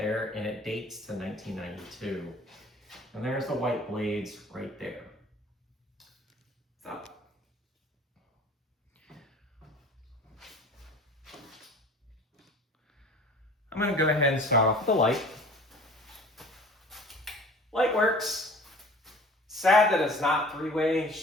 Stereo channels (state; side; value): normal; both; correlation 0.45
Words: and it dates to 1992. And there's the white blades right there. So, I'm going to go ahead and start off with the light. Light works. Sad that it's not three-way. It's